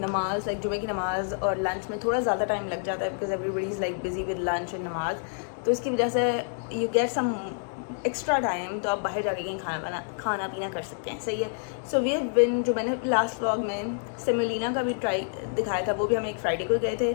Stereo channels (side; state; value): right; silent; 59 dB below the other